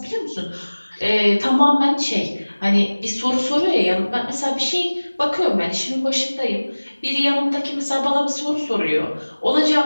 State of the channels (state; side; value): inverted; both; correlation -1.00